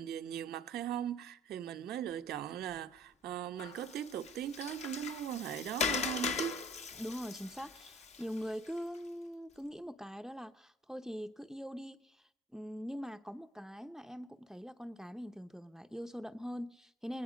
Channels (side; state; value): both; normal; correlation 0.53